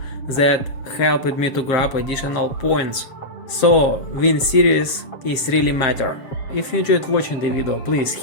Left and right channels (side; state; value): right; late; 7.4 ms